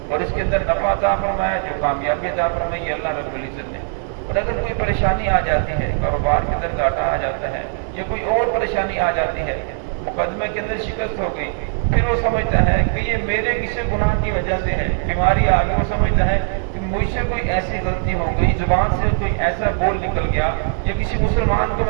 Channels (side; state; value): left; silent; 66 dB below the other